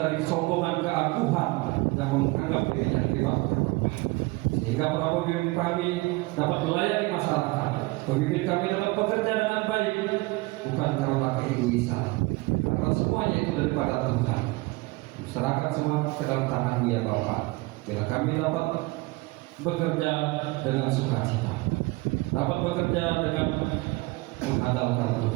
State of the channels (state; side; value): quieter; left; 23.3 dB